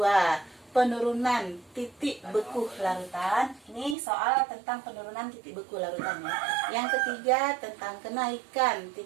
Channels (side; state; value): left; drops out; at 4.0 s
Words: penurunan titik beku larutan. Ini soal tentang penurunan titik beku larutan ya. Yang ketiga tentang kenaikan